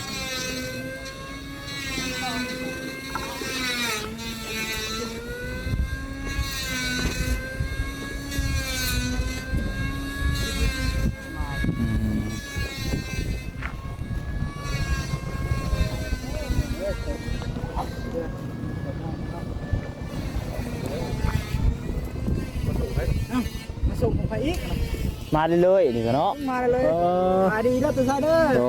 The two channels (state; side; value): identical; both; correlation 1.00